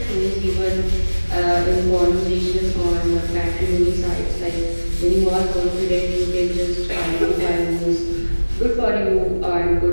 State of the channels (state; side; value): inverted; both; correlation -1.00